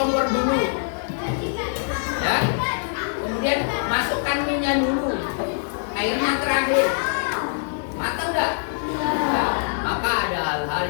dulu, ya. Kemudian masukkan minyak dulu, airnya terakhir. Matang nggak? Nah, maka ada hal-hal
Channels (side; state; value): right; silent; digital silence